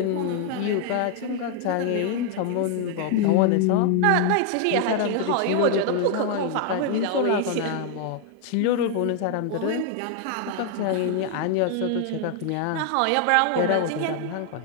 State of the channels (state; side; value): different; both; correlation 0.00